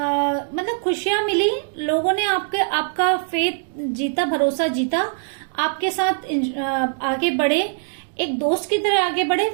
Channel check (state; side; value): silent; left; digital silence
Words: खुशियां मिली, लोगों ने आपका फेथ जीता, भरोसा जीता, आपके साथ आगे बढ़े, एक दोस्त की तरह आगे बढ़े,